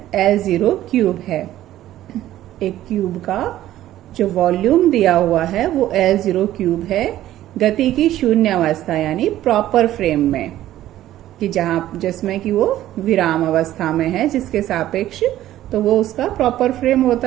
L0 क्यूब है। एक क्यूब का जो वॉल्यूम दिया हुआ है वो L0 क्यूब है, गति की शून्य अवस्था यानी प्रॉपर फ्रेम में, कि जिसमें कि वो विराम अवस्था में है, जिसके सापेक्ष तो वो उसका प्रॉपर फ्रेम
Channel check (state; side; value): quieter; left; 13.5 dB